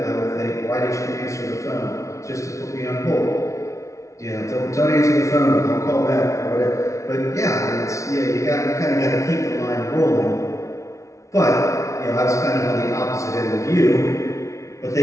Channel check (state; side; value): late; right; 0.14 ms